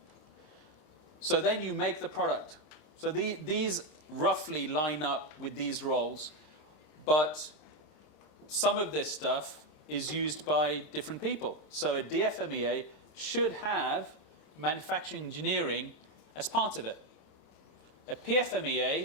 So then you make the product. So these roughly line up with these roles, but some of this stuff is used by different people. So a DFMEA should have manufacturing engineering as part of it. A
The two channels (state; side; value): late; right; 26 ms